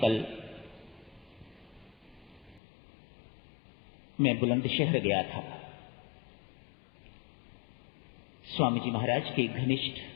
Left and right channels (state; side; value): drops out; right; at 2.6 s